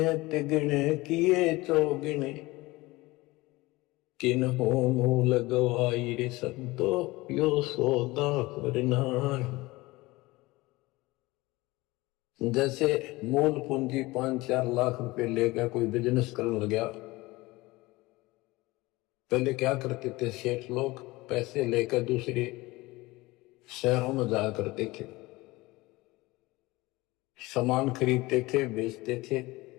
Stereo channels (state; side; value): quieter; right; 20.9 dB